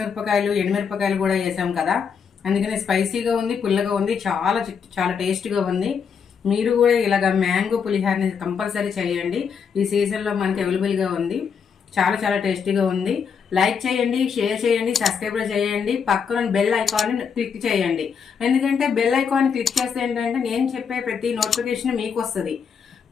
ఎండుమిరపకాయలు కూడా వేసాం కదా, అందుకని స్పైసీగా ఉంది, పుల్లగా ఉంది, చాలా చాలా టేస్ట్గా ఉంది. మీరు కూడా ఇలాగ మ్యాంగో పులిహోరని కంపల్సరీ చేయండి. ఈ సీజన్లో మనకి అవైలబుల్గా ఉంది. చాలా చాలా టేస్టీగా ఉంది. లైక్ చేయండి, షేర్ చేయండి, సబ్స్క్రైబ్ చేయండి. పక్కన బెల్ ఐకాన్ క్లిక్ చేయండి. ఎందుకంటే బెల్ ఐకాన్ క్లిక్ చేస్తే ఏంటంటే నేను చెప్పే ప్రతి నోటిఫికేషన్ మీకు వస్తుంది.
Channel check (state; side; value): quieter; right; 6.6 dB